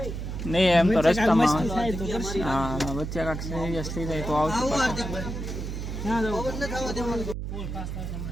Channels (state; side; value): noise; right; hum, 5 dB below the sound